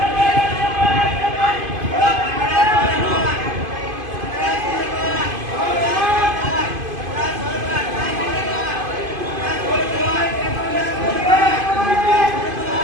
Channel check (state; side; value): late; left; 2.5 ms